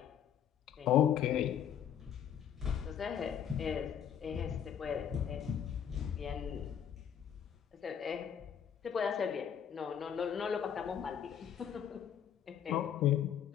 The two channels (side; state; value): right; quieter; 8.8 dB